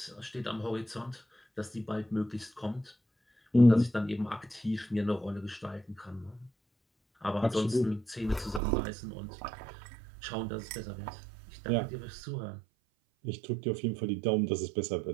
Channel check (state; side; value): drops out; left; at 8.6 s